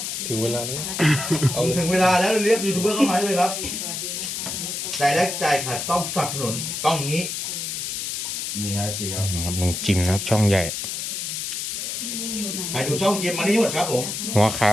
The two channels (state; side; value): noise; left; hiss, 4 dB below the sound